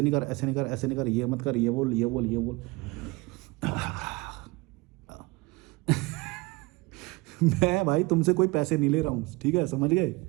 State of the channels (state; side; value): quieter; left; 23.7 dB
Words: नहीं कर, ऐसे नहीं कर, ऐसे नहीं कर, ये मत कर, ये बोल, ये बोल, ये बोल। मैं भाई तुमसे कोई पैसे नहीं ले रहा हूँ, ठीक है, समझ गए?